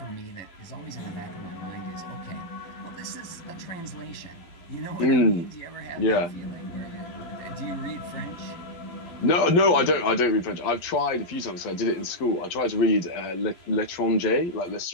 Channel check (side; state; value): right; late; 12 ms